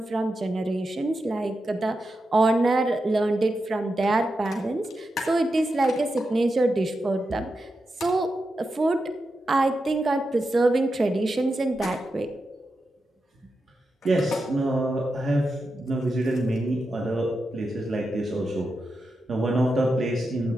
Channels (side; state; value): both; normal; correlation 0.88